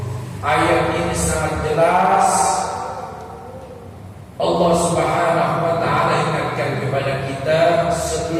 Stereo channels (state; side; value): identical; both; correlation 1.00